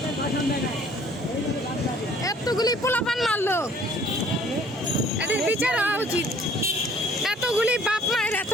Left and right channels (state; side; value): normal; both; correlation 0.56